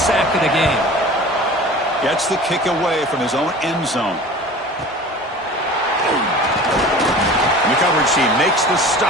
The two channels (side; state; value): both; normal; correlation 0.40